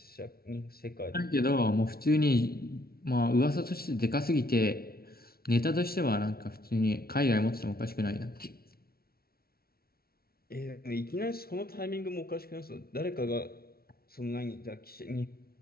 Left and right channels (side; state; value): right; late; 0.44 ms